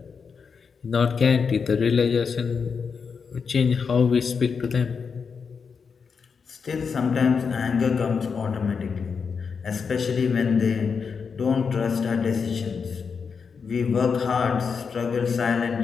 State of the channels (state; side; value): quieter; right; 5.8 dB